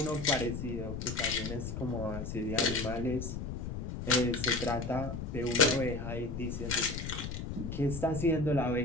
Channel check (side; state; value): left; noise; rumble, 5 dB below the sound